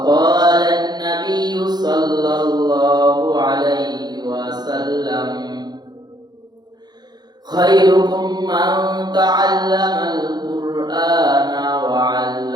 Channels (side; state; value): left; late; 0.20 ms